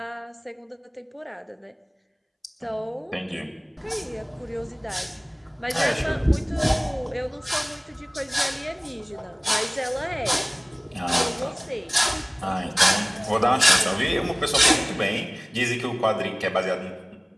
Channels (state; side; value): identical; both; correlation 1.00